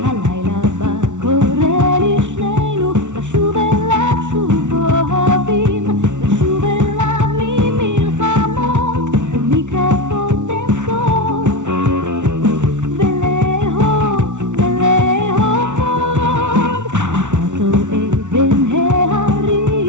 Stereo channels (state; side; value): late; left; 0.85 ms